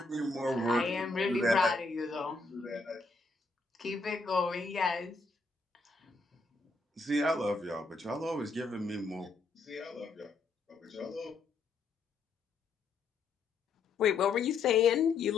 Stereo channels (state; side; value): quieter; right; 3.9 dB